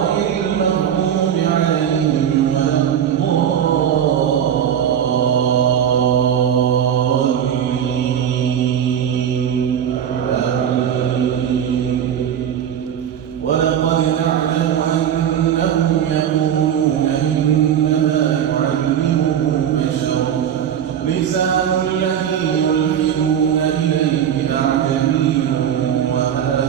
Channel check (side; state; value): left; quieter; 9.2 dB